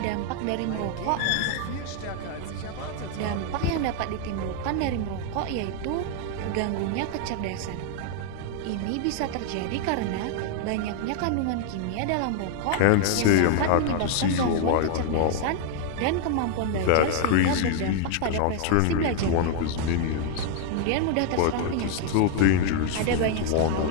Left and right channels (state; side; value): different; both; correlation 0.00